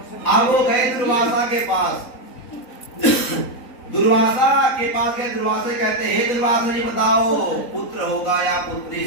अब वो गए दुर्वासा के पास। दुर्वासा के पास गए। दुर्वासा कहते हे दुर्वासा जी बताओ पुत्र होगा या पुत्री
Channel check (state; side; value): late; right; 3.9 ms